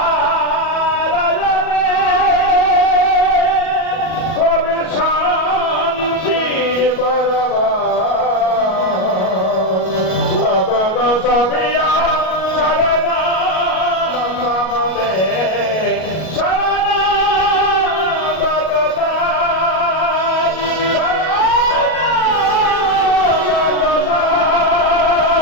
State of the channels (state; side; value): late; right; 37 ms